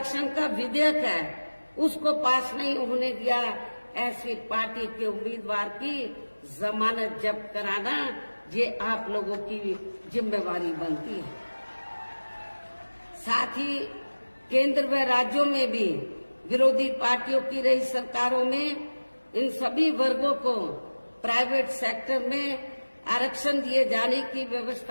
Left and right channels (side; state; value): both; inverted; correlation -1.00